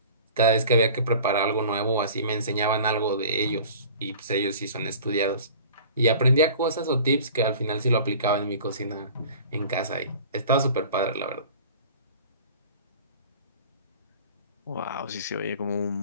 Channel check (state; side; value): inverted; both; correlation -0.43